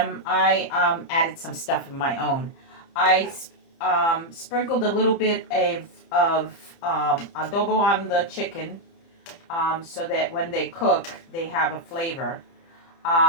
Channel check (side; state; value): right; late; 30 ms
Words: I added some stuff of my own. I sprinkled a little bit of adobo on the chicken so that when they cook, they have a flavor.